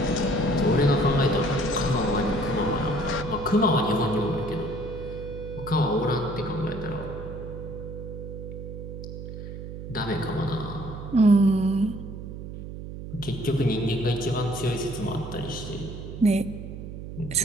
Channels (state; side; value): noise; right; hum, 9 dB below the sound